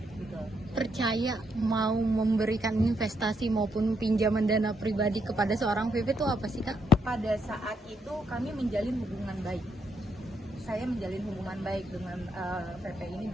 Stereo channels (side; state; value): both; normal; correlation 0.77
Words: Gitu. Percaya mau memberikan investasi maupun pinjaman dana pribadi kepada seorang VP itu apa sih Kak? Pada saat itu kami menjalin hubungan baik. Saya menjalin hubungan baik dengan VP ini,